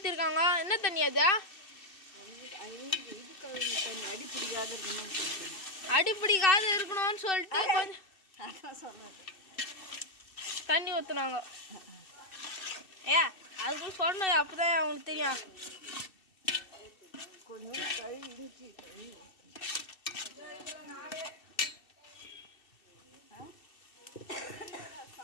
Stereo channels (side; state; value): right; late; 2.6 ms